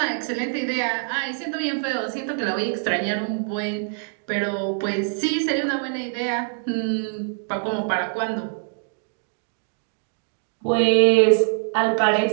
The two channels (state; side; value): silent; left; 63 dB below the other